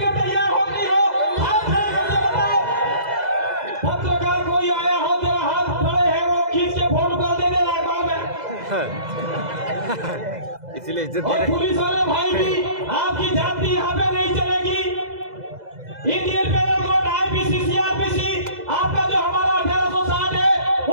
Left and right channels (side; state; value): left; late; 2.0 ms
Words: तैयार हो नहीं हो? हाथ खड़े करके बताओ। पत्रकार कोई आया हो, जरा हाथ खड़े हैं, वो खींच के फोन कर देने अखबार में। इसीलिए इज्जत। और पुलिस वाले भाई भी, आपकी जाति यहाँ पे नहीं चलेगी। Indian penal code, IPC, CrPC, आपका जो हमारा 1860 है,